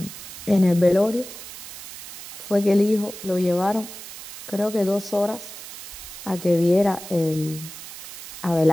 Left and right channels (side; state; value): right; noise; hiss, 12 dB below the sound